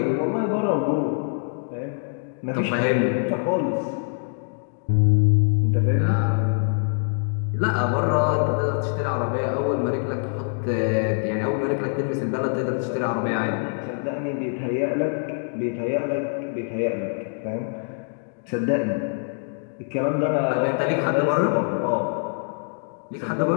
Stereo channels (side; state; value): right; silent; 60 dB below the other